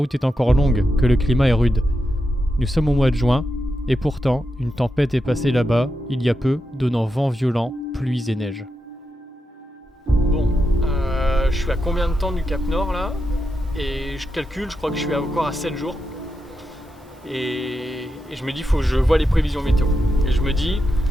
est encore longue, que le climat est rude. Nous sommes au mois de juin, et pourtant, une tempête est passée là-bas, il y a peu, donnant vent violent, pluies et neige. Bon, je suis à combien de temps du Cap Nord là ? Et je calcule, je crois que je suis encore à 7 jours. Et je me dis, faut que je vois les prévisions météo. Et je me dis,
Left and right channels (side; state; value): both; normal; correlation 0.87